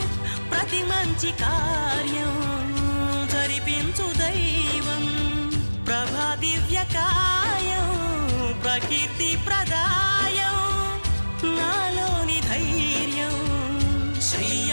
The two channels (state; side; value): inverted; both; correlation -1.00